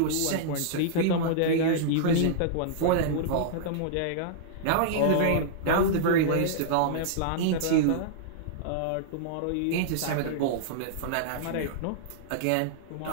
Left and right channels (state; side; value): different; both; correlation -0.02